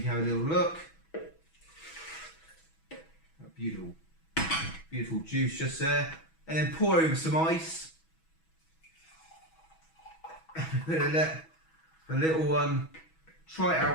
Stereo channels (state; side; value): late; right; 6.2 ms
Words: can have a little look. Beautiful, beautiful juice just there. And then pour over some ice. Let the little one try it